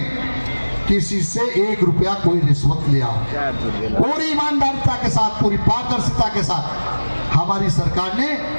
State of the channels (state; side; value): inverted; both; correlation -1.00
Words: किसी से 1 रुपया कोई रिश्वत लिया। पूरी ईमानदारिता के साथ, पूरी पारदर्शिता के साथ हमारी सरकार ने